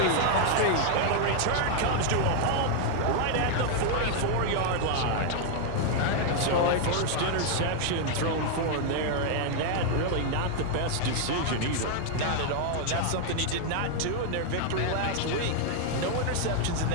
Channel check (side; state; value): both; different; correlation 0.00